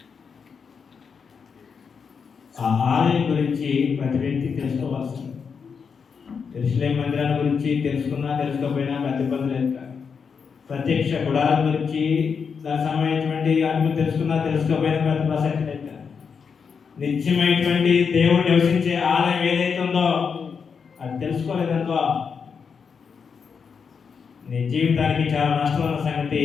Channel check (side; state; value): right; quieter; 6.1 dB